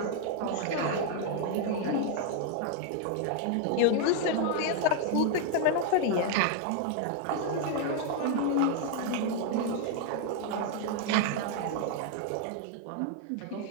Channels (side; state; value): both; different; correlation 0.00